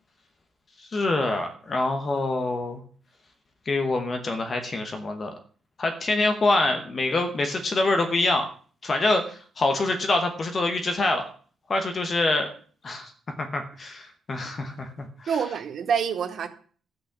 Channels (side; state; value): both; normal; correlation 0.85